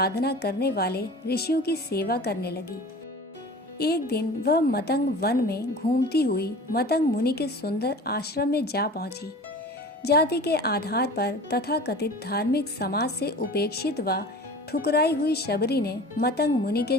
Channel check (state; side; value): normal; both; correlation 0.39